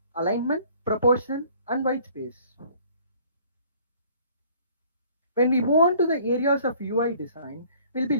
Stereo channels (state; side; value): inverted; both; correlation -0.55